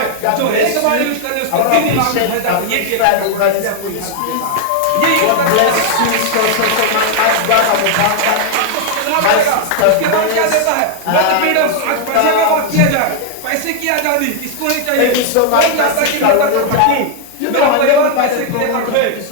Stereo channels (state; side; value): different; both; correlation 0.00